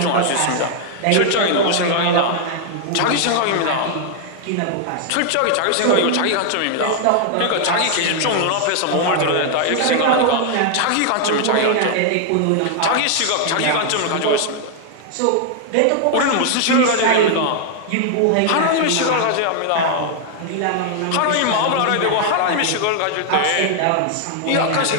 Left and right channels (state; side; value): different; both; correlation 0.00